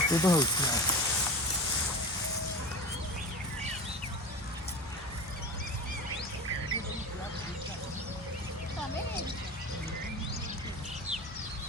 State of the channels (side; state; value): both; normal; correlation 0.30